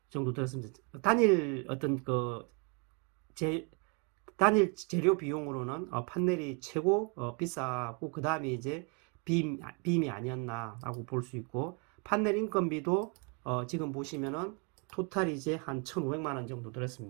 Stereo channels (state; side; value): quieter; left; 35.5 dB